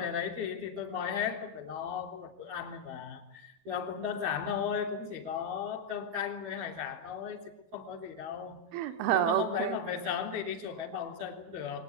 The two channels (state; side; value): late; left; 12 ms